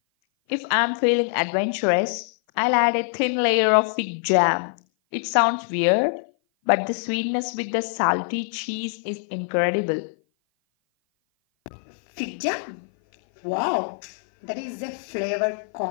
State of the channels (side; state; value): right; silent; 56 dB below the other